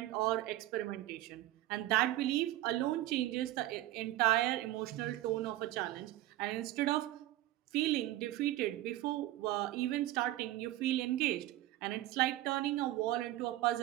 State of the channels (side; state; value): left; quieter; 15.6 dB